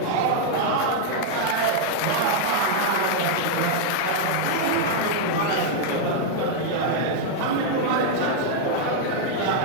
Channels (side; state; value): both; different; correlation 0.00